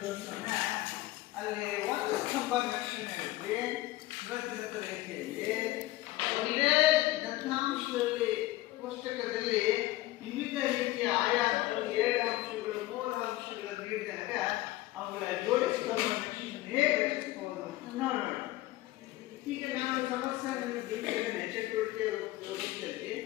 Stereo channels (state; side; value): quieter; right; 17.4 dB